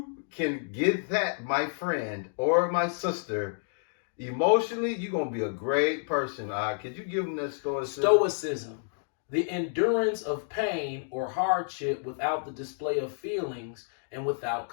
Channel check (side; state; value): right; silent; digital silence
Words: can get that, my friend or my sister, emotionally, you're gonna be a great person. Could you give them that stoicism? Stoicism, the endurance of pain or hardship without the display of feelings and without